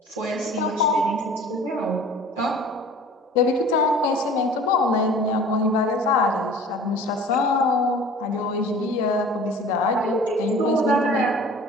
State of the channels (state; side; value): normal; both; correlation 0.45